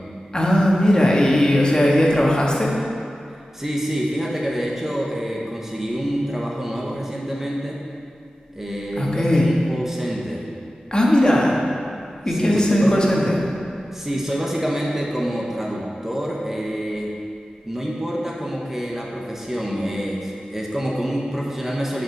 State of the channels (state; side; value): normal; both; correlation 0.94